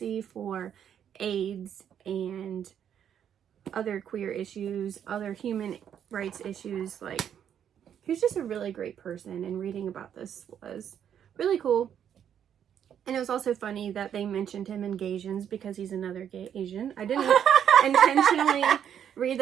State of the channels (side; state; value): left; quieter; 9.1 dB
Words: for AIDS and other queer issues, other human rights issues, like, he's just a really great person, and reading about this was really cool. And it was also funny that they mentioned him in Gaysians because he's another gay Asian. I didn't intentionally read